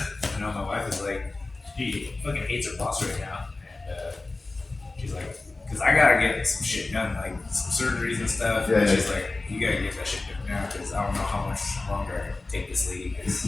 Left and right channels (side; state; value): right; quieter; 3.3 dB